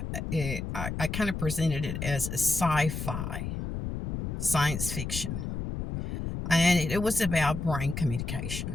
I kind of presented it as a sci-fi, science fiction. And it was about brain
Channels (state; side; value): noise; left; rumble, 5 dB below the sound